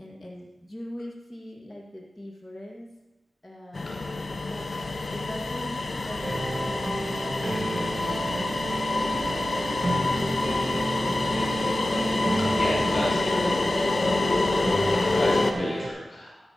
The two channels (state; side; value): normal; both; correlation 0.95